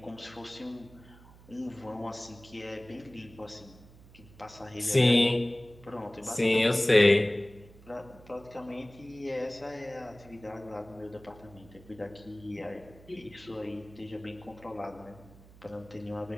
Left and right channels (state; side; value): noise; right; hum, 22 dB below the sound